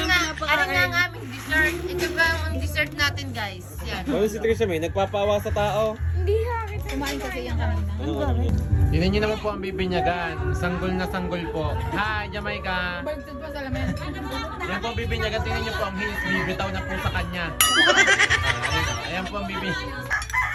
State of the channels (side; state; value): both; identical; correlation 1.00